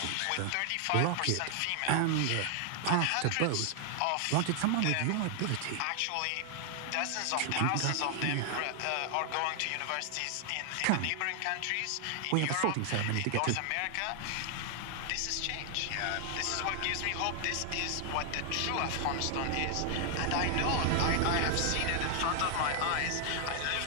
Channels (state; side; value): different; both; correlation 0.00